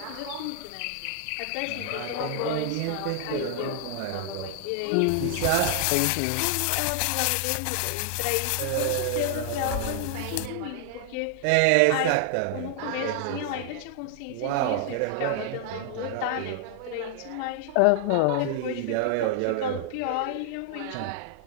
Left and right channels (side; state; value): both; different; correlation 0.00